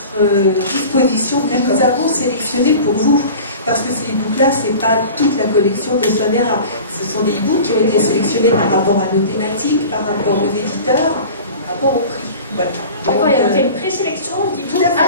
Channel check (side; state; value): both; inverted; correlation -0.39